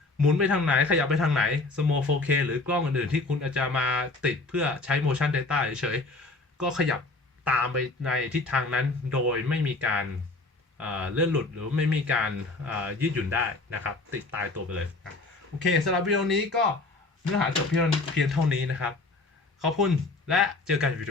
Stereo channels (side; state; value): right; quieter; 3.3 dB